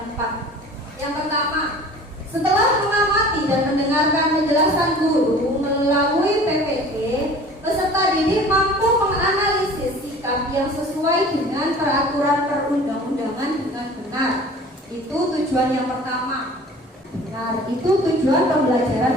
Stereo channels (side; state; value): both; normal; correlation 0.44